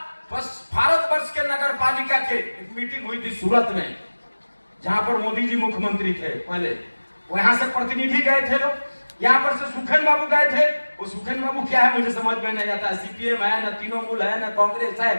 भारतवर्ष के नगर पालिका के एक मीटिंग हुई थी सूरत में, जहां पर मोदी जी मुख्यमंत्री थे पहले, वहां से प्रतिनिधि गए थे लोग, यहाँ पर से सुखेन बाबू गए थे। वो सुखेन बाबू क्या है मुझे समझ में नहीं आता, सीपीएम है, न तृणमूल है, न कांग्रेस है,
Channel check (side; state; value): both; inverted; correlation -1.00